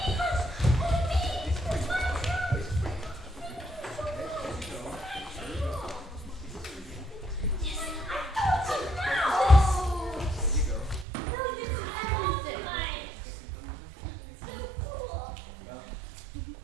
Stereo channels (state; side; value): drops out; left; at 11.1 s